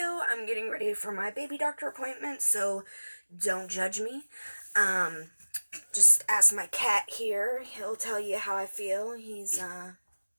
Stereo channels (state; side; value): inverted; both; correlation -1.00